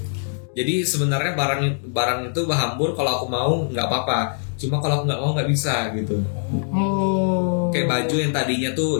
Jadi sebenarnya barang itu hambur kalau aku mau nggak apa-apa. Cuma kalau aku nggak mau nggak bisa gitu. Oh. Kayak baju yang tadinya tuh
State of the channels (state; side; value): silent; right; digital silence